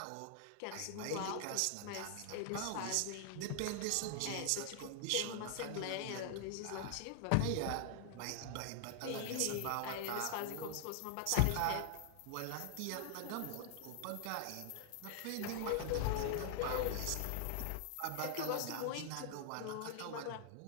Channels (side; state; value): both; different; correlation 0.00